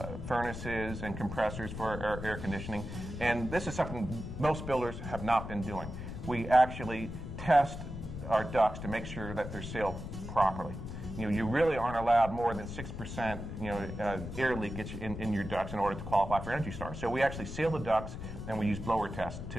furnaces and compressors for our air conditioning, and this is something most builders have not been doing. We actually test our ducts to make sure that they're sealed properly. You really aren't allowed more than 6% air leakage in your ducts in order to qualify for Energy Star. So we actually seal the ducts, and we use blower tests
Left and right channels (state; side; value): noise; left; rumble, 8 dB below the sound